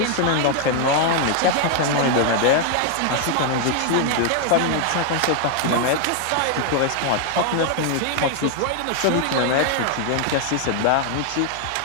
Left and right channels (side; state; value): both; different; correlation 0.00